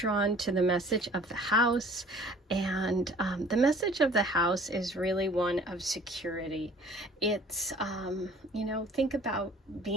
to the message of the house, and the message of the house is really one of security. It's, think about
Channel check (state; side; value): normal; both; correlation 0.51